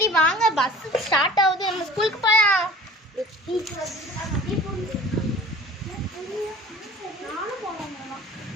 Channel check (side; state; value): both; normal; correlation 0.44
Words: வாங்க, பஸ் ஸ்டார்ட் ஆகுது. நம்ம ஸ்கூலுக்கு போலாம்.